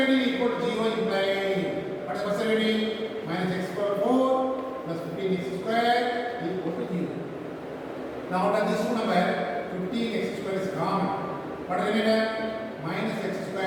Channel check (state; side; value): identical; both; correlation 1.00